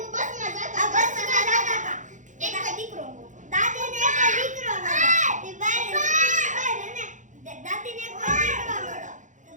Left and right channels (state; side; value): late; left; 0.36 ms